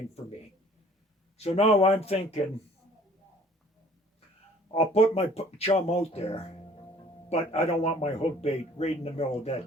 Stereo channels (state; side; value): normal; both; correlation 0.53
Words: for me. So now I'm thinking, I'll put my chum out there, but I don't want my hook bait right in the middle of